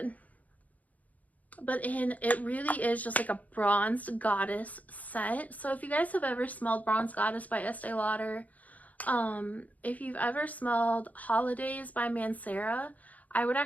But it really is just like a bronzed goddess scent. So if you guys have ever smelled Bronze Goddess by Estee Lauder, if you've ever smelled Holidays by Mancera, I would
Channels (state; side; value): late; right; 0.075 ms